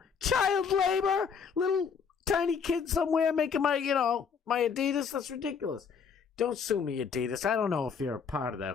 child labor, little tiny kid somewhere making my, my Adidas. That's ridiculous. Don't sue me, Adidas. I don't know if you're a part of that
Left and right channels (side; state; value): right; quieter; 6.3 dB